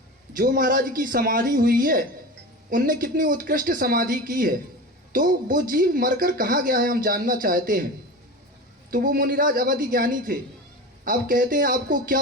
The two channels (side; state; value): both; normal; correlation 0.30